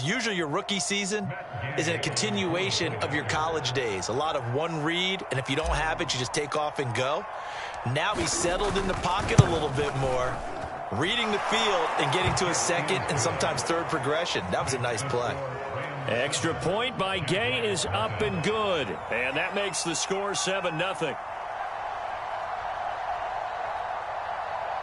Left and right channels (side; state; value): both; identical; correlation 1.00